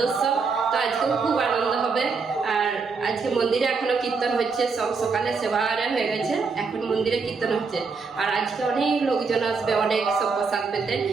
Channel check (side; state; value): left; quieter; 4.8 dB